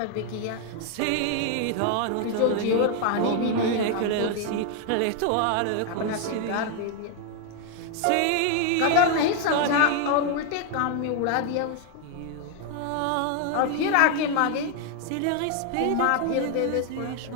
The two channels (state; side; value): different; both; correlation 0.00